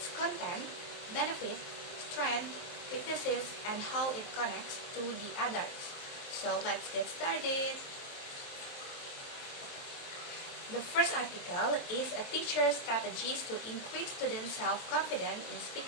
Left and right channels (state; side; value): late; right; 23 ms